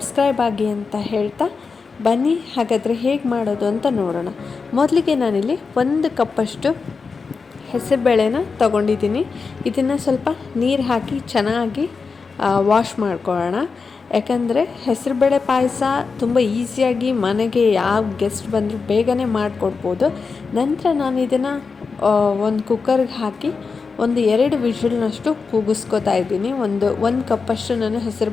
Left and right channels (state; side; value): quieter; right; 4.9 dB